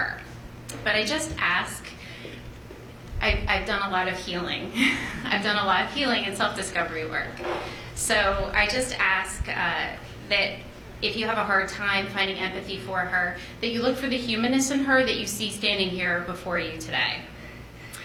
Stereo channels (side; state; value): both; identical; correlation 1.00